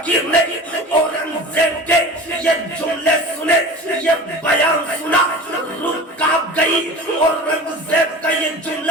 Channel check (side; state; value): both; normal; correlation 0.36